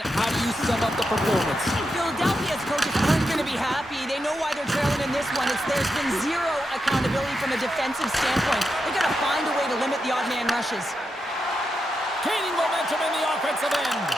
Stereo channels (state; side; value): normal; both; correlation 0.86